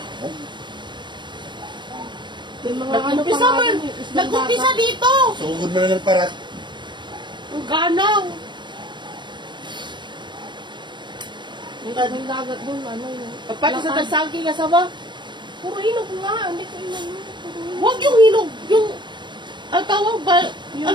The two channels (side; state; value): left; late; 0.22 ms